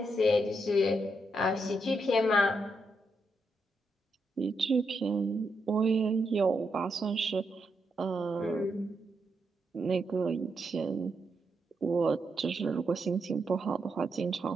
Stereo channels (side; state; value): both; normal; correlation 0.82